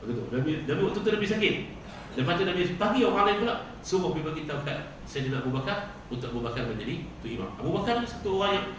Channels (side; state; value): both; identical; correlation 1.00